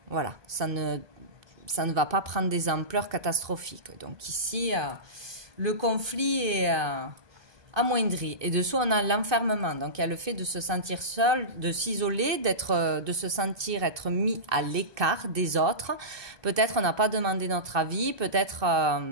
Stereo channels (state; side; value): late; left; 1.2 ms